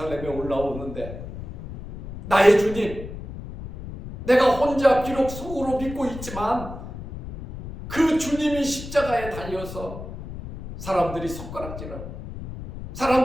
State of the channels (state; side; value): noise; left; rumble, 11 dB below the sound